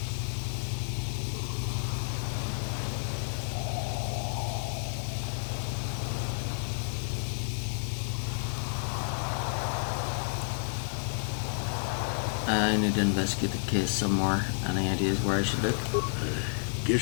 I need to investigate the case some more. Any ideas where I should look?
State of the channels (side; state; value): right; silent; digital silence